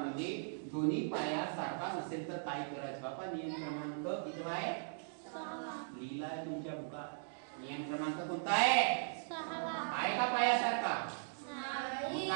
दोन्ही पाया सारखा नसेल तर काय करायचं बाबा नियम क्रमांक किती आहे 6 लिहिलाय तुमच्या बुकात नियम क्रमांक कोणता आहे 6 आहे का पाया सारखा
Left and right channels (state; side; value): silent; left; digital silence